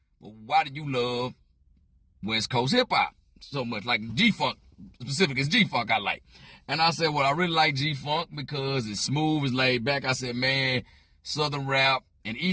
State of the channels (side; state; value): both; identical; correlation 1.00